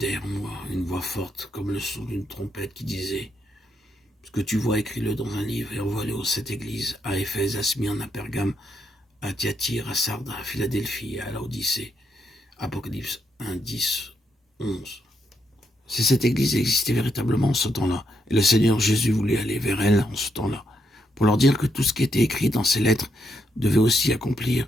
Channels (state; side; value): normal; both; correlation 0.79